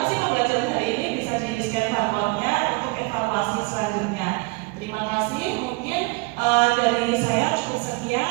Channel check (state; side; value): quieter; left; 26.2 dB